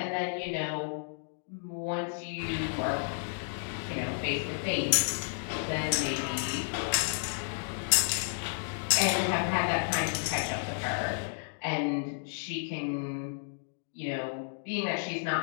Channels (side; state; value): right; silent; digital silence